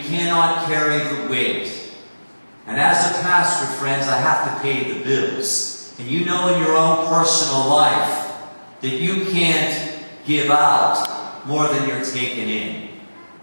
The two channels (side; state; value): both; inverted; correlation -1.00